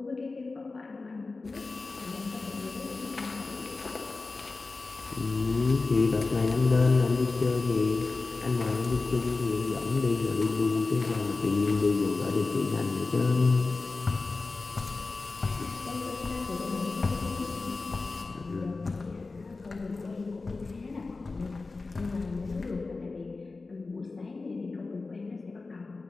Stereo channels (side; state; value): right; quieter; 3.8 dB